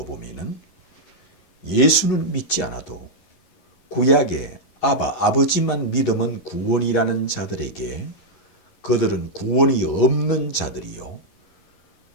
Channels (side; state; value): right; late; 11 ms